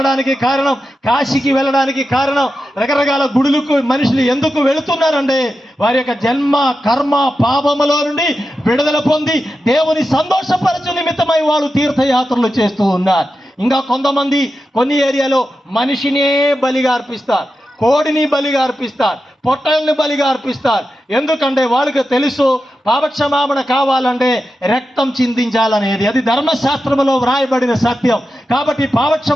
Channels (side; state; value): both; normal; correlation 0.90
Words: కారణం, కాశీకి వెళ్ళడానికి కారణం, రకరకాల గుడులకు మనుషులు ఎందుకు వెళుతున్నారంటే వారి యొక్క జన్మ కర్మ పాపములో నుండి విడుదల పొంది దేవుని సంతోషపరచు నిమిత్తమై వాళ్ళు తీర్థయాత్రలు చేస్తూ ఉన్నారు. ఇంకా కొంతమంది కొన్ని ఏరియాలో మనిషినే బలిగా అర్పిస్తారు, కోడిని బలిగా అర్పిస్తారు, పొట్టల్ని బలిగా అర్పిస్తారు. ఎందుకంటే వాళ్ళకి తెలుసు పాపక్షమాపణ కావాలంటే రక్తం చిందించాలనేది, అది ధర్మశాస్త్రంలో వ్రాయబడిన సత్యం. కాబట్టి